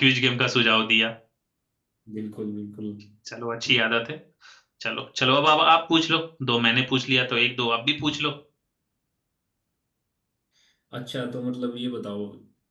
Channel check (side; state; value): both; identical; correlation 1.00